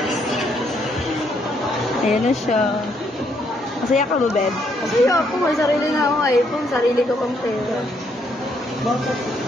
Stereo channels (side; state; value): both; normal; correlation 0.72